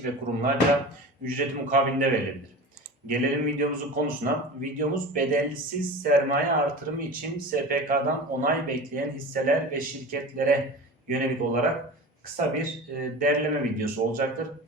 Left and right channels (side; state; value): both; normal; correlation 0.33